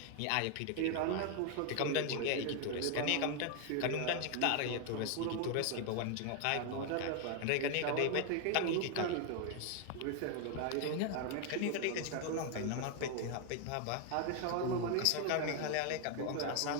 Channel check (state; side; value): different; both; correlation 0.01